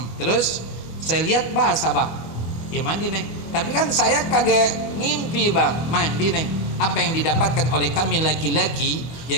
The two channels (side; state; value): right; late; 25 ms